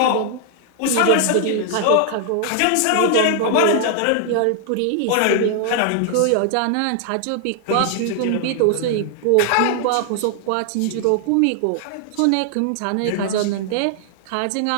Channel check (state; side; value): different; both; correlation 0.00